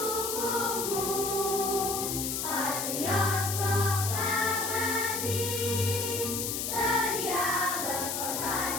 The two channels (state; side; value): noise; left; hiss, 2 dB below the sound